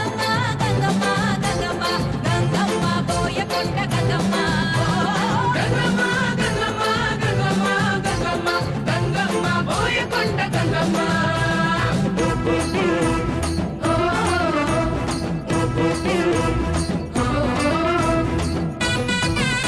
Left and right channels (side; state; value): both; identical; correlation 1.00